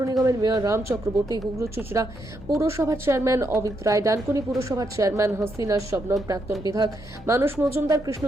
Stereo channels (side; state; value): both; normal; correlation 0.79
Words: নিগমের মেয়র রাম চক্রবর্তী, হুগলি চুঁচুড়া পুরসভার চেয়ারম্যান অমিত রায়, ডানকুনি পুরসভার চেয়ারম্যান হাসিনা শবনম, প্রাক্তন বিধায়ক মানুষ মজুমদার,